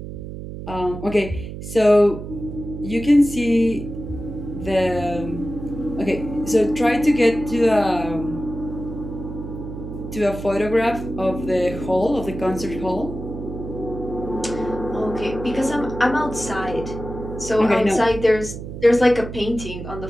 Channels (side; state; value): right; noise; hum, 9 dB below the sound